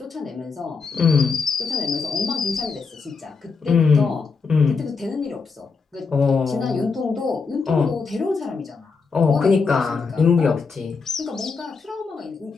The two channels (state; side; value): quieter; right; 4.8 dB